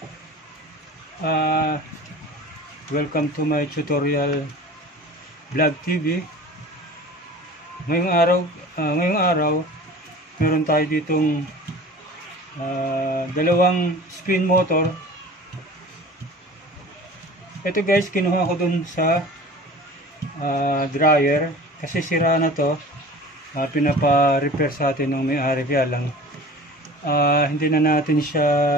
Welcome to my tutorial vlog TV. Ngayong araw, meron tayo ditong dalawang spin motor. Ito guys, kinuha ko dun sa dryer kasi sira na to. Pinapa-repair sa atin ng may-ari, kaya lang hindi na natin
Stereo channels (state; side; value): normal; both; correlation 0.40